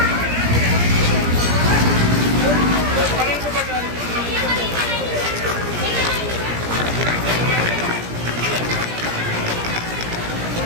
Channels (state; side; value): late; left; 17 ms